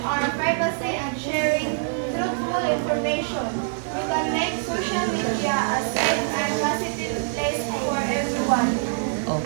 our privacy, and sharing truthful information, we can make social media a safe and positive place for everyone.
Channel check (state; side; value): silent; left; digital silence